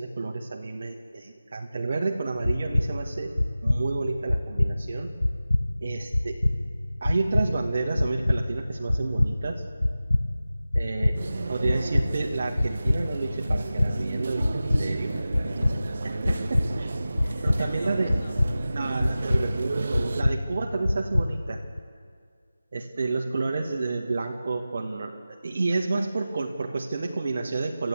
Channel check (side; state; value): both; inverted; correlation -0.95